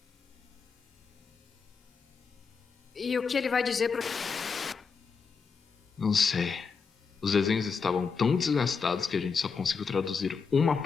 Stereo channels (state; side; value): quieter; right; 5.4 dB